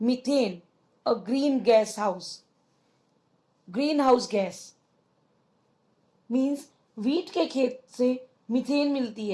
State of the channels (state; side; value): identical; both; correlation 1.00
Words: a green gas house. Greenhouse gas means wheat के खेत से मीथेन मिलती